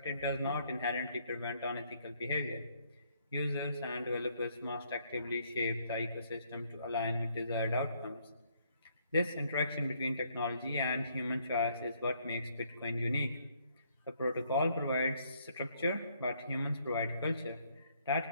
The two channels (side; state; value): both; inverted; correlation -0.68